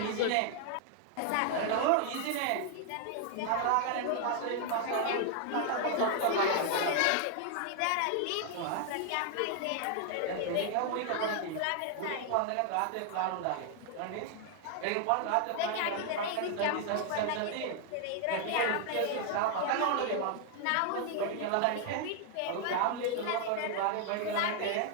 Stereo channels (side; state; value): both; different; correlation 0.00